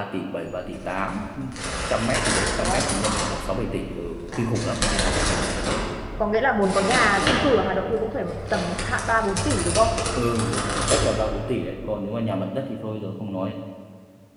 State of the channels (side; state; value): both; identical; correlation 1.00